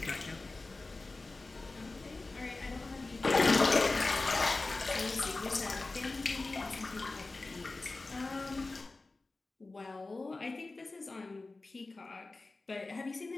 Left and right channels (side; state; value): right; quieter; 3.4 dB